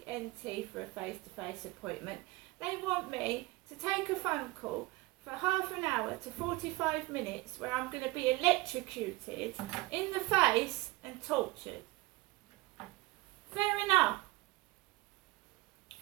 ENT for a face-to-face appointment. They want me to take a phone call for half an hour to 45 minutes where I'm going to be electrocuted in the face and tortured. Fair enough.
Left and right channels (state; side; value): quieter; left; 21.7 dB